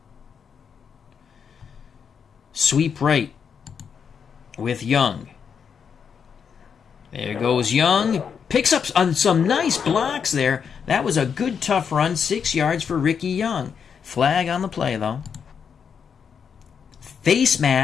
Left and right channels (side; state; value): right; quieter; 6.9 dB